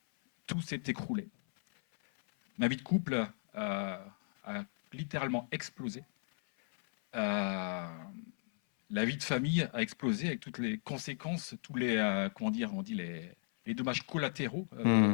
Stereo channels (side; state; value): right; silent; 54 dB below the other